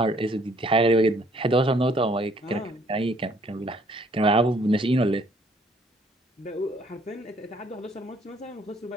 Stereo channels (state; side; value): normal; both; correlation 0.63